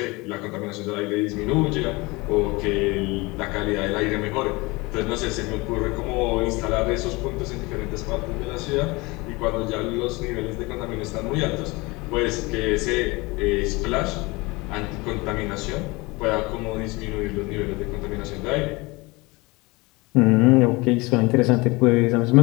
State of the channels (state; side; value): quieter; right; 24.2 dB